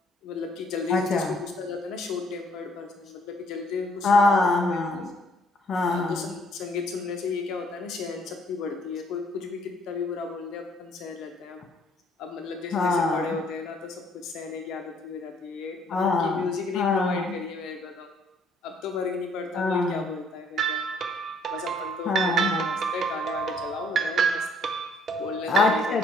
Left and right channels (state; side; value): normal; both; correlation 0.63